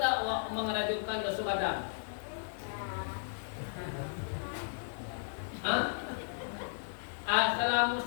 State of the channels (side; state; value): right; silent; 54 dB below the other